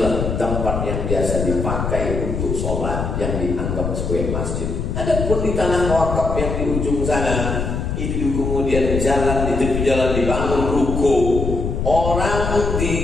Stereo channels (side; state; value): left; noise; rumble, 2 dB below the sound